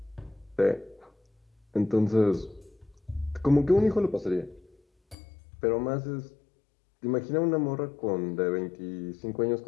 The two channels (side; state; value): right; drops out; at 5.2 s